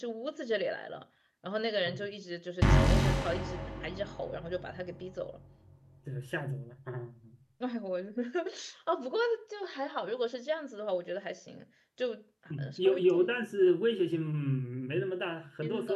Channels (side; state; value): both; identical; correlation 1.00